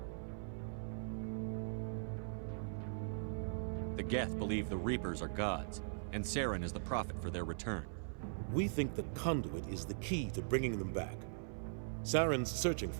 The Geth believe the Reapers are gods, and Saren is the prophet for their return. We think the conduit is the key to bringing them back. Saren's searching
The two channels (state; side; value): silent; left; 51 dB below the other